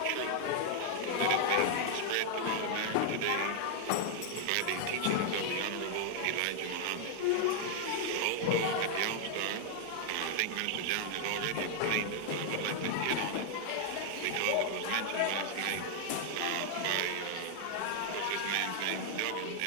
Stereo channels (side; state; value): both; different; correlation 0.00